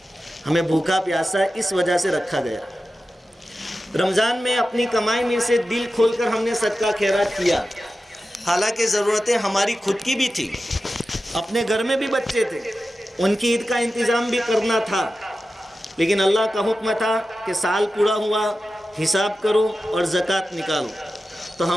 ہمیں بھوکا پیاسا اس وجہ سے رکھا گیا۔ رمضان میں اپنی کمائی میں سے دل کھول کر ہم نے صدقہ خیرات کیا، حالانکہ ضرورتیں ہماری خود کی بھی تھی، اپنے گھر میں بھی بچے تھے، ان کی عید کا انتظام بھی کرنا تھا، لیکن اللہ کا حکم تھا کہ سال پورا ہوا حساب کرو اور زکوٰۃ نکالو۔ تو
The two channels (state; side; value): normal; both; correlation 0.93